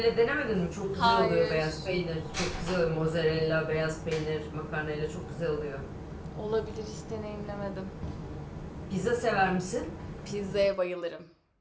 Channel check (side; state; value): both; identical; correlation 1.00